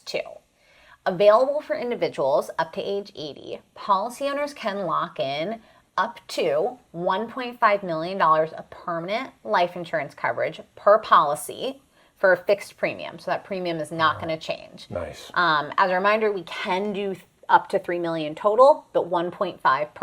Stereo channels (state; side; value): identical; both; correlation 1.00